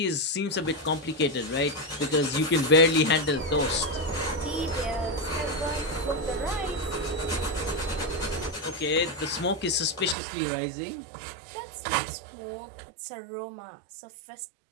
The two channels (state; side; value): drops out; left; at 10.2 s